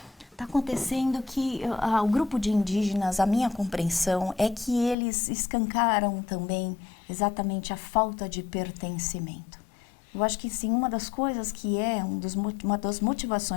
Está acontecendo que o grupo de indígenas, a minha compreensão, é que eles escancaram também exatamente a falta de pertencimento. Eu acho que sim, uma das coisas que é uma das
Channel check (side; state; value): right; drops out; at 5.0 s